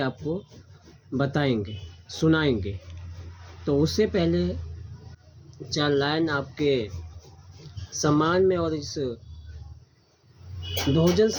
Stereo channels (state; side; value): identical; both; correlation 1.00